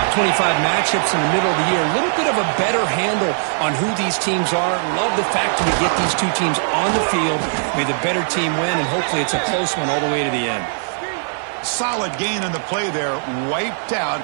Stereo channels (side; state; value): left; silent; digital silence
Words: 25 matchups in the middle of the year. A little bit of a better handle on who these teams are. Love the fact that we get these two teams on the field. May the better team win, and hopefully it's a close one all the way to the end. Solid gain on the play there, wiped out